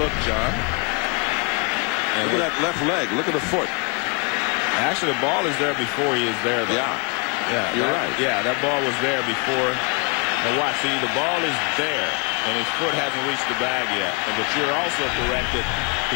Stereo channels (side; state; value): right; quieter; 33.7 dB